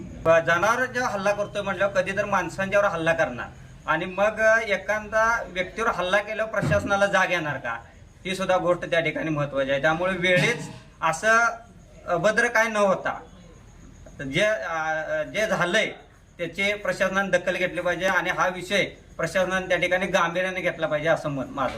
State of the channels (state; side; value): identical; both; correlation 1.00